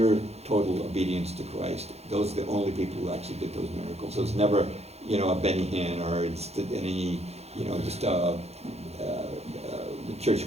total obedience to Christ. Those are the only people who actually did those miracles. So it's never, you know, a Benny Hinn or it's any, you know, just the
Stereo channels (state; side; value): late; left; 0.31 ms